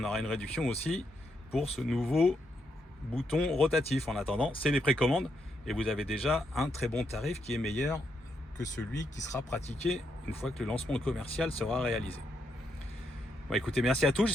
aura une réduction aussi pour ce nouveau bouton rotatif. En attendant, c'est les précommandes et vous avez déjà un très bon tarif qui est meilleur que celui qui sera pratiqué une fois que le lancement commercial sera réalisé. Bon, écoutez, merci à tous.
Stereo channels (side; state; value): both; normal; correlation 0.79